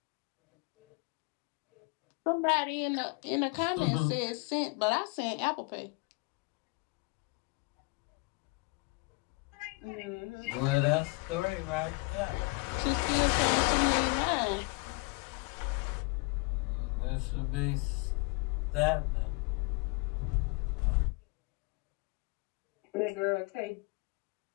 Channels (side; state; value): right; quieter; 28.5 dB